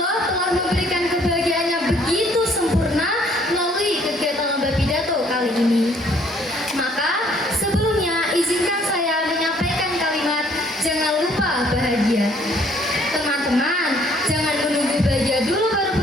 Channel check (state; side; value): normal; both; correlation 0.62